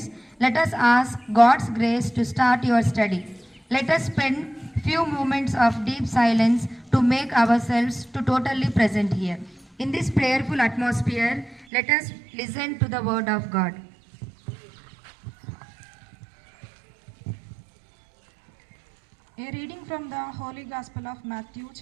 let us ask God's grace to start your study. Let us spend few moments of deep silence to make ourselves to totally present here. In this prayerful atmosphere, let us listen to the word of God. A reading from the Holy Gospel of Matthew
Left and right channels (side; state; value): left; drops out; at 11.7 s